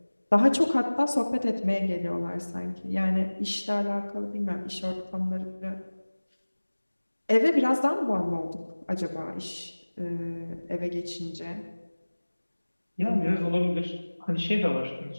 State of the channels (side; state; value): both; inverted; correlation -1.00